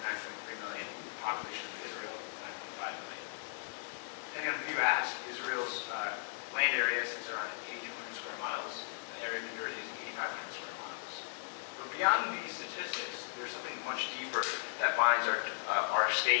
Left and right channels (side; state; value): right; silent; 53 dB below the other